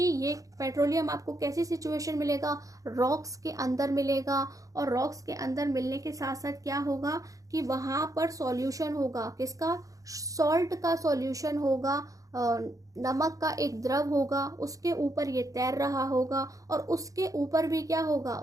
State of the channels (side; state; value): left; late; 0.16 ms